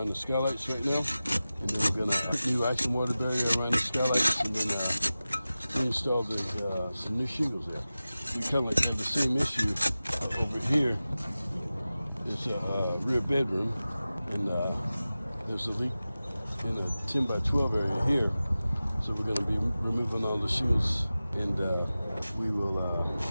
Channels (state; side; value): inverted; both; correlation -0.96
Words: the skylights right now. And then we're going to put new ice and water barrier around the skylights, and then install some new shingles there. We kind of have the same issue over here. It's a rear bedroom, and there's a leak in a 10 by 12 area here. So we're going to be removing all the shingles, and we will